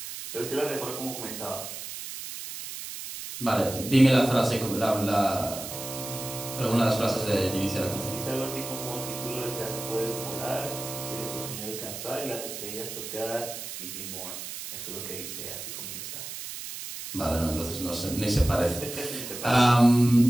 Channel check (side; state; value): right; noise; hiss, 8 dB below the sound